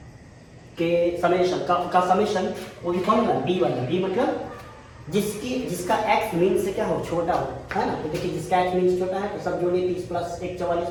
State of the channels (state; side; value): identical; both; correlation 1.00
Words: के समेशन का समेशन, वो भी कौन वाला, b वाला। b मतलब जिसका x मीन से क्या हो, छोटा हो, है ना। तो देखिए जिसका x मीन से छोटा है, तो सब जोड़िए, 30 प्लस 1 44